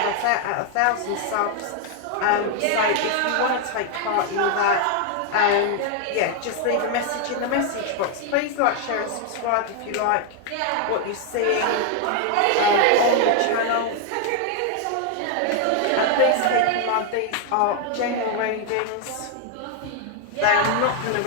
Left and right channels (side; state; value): both; different; correlation 0.00